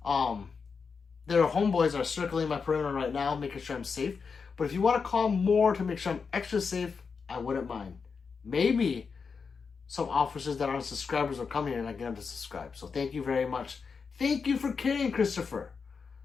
Their homeboys are circling my perimeter right now, making sure I'm safe. But if you want to call more to make sure I'm extra safe, I wouldn't mind. Maybe some officers that aren't subscribers will come here and I get them to subscribe. So thank you very much. Thank you for caring, Christopher.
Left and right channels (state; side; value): quieter; right; 5.4 dB